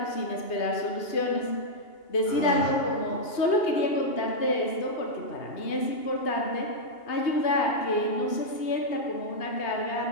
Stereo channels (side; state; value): right; late; 2.8 ms